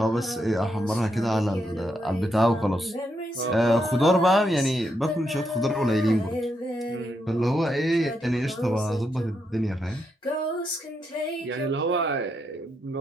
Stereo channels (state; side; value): normal; both; correlation 0.81